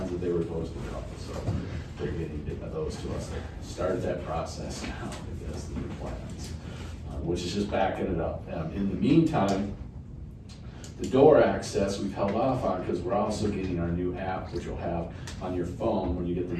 that they were supposed to draw. So they're getting those to us. They started that process now because the new plans, which is just backing it up. In the meantime, the door access we've held off on because we're also getting our new app, which you'll have on your phone when you get the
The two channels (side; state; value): both; identical; correlation 1.00